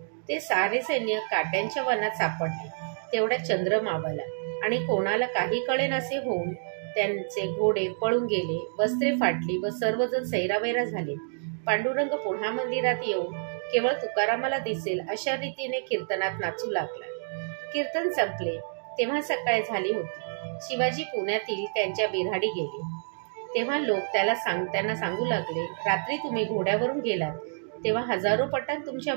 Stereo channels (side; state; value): left; silent; digital silence